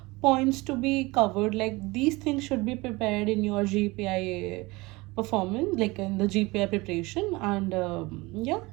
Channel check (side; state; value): left; quieter; 22.8 dB